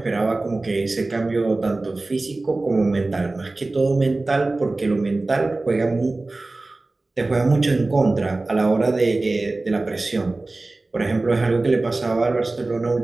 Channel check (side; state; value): left; quieter; 3.1 dB